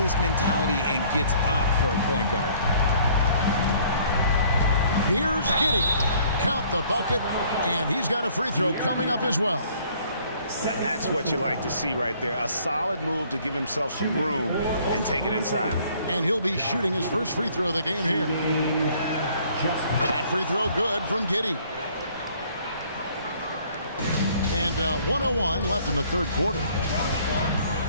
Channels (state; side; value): inverted; both; correlation -0.59